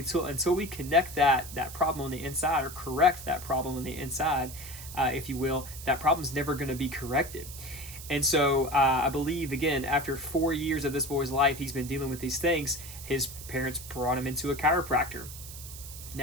we connect that problem on the inside, or correct that problem on the inside, if you will, that problem's never going to be corrected. And so I believe, again, after 4 years of this boy's life, he's been dealing with these things. His parents brought him into a chiropractor.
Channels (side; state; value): right; noise; hiss, 13 dB below the sound